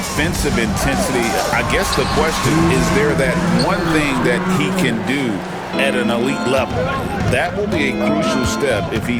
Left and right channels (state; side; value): identical; both; correlation 1.00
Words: intensity. I guess the question is there that one thing that he can do at an elite level. That will be a crucial step if